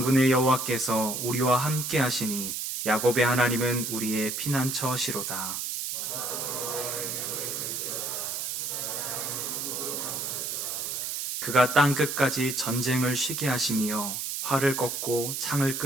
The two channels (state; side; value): noise; right; hiss, 3 dB below the sound